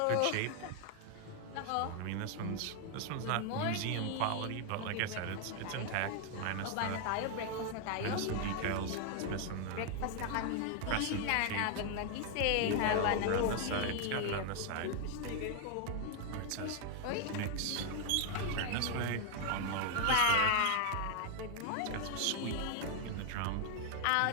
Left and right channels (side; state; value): both; different; correlation 0.00